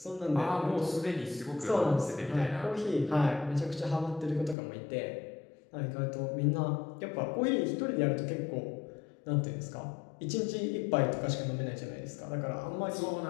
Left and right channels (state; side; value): drops out; right; at 4.5 s